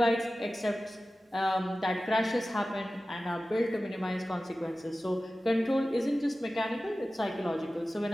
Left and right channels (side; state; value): both; normal; correlation 0.95